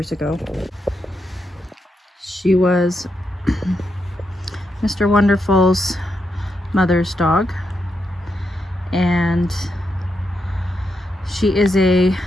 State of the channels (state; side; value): normal; both; correlation 0.83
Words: ago. She was Mr. Wonderful's mother's dog, and she's a